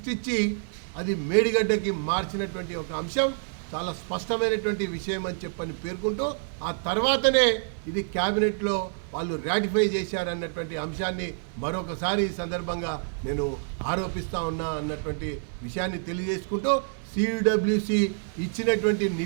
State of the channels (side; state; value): left; silent; 60 dB below the other